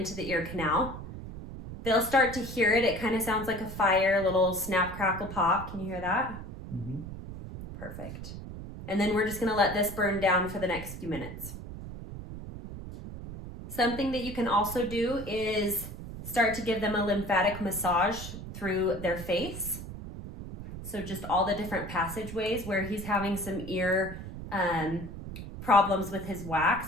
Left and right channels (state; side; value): noise; right; rumble, 10 dB below the sound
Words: the ear canal. They'll start to hear it. It kind of sounds like a fire, a little snap, crackle, pop. Can you hear that? Mm-hmm. Perfect. And then we're just gonna let this burn down for the next few minutes. Something that you can also do is start to give them a lymphatic massage through their face. So just all the different passageways where he's having some ear problems with his